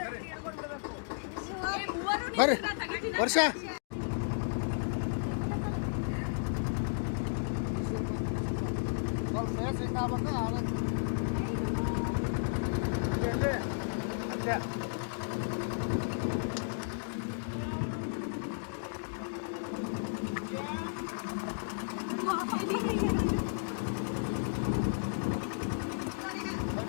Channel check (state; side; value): silent; right; digital silence